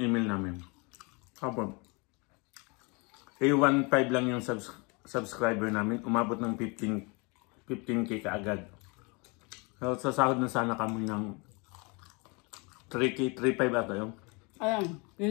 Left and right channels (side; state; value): right; quieter; 29.7 dB